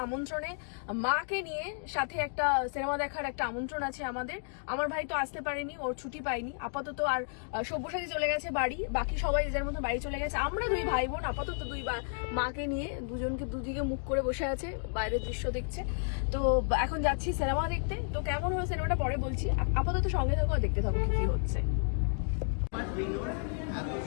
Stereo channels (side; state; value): right; silent; 56 dB below the other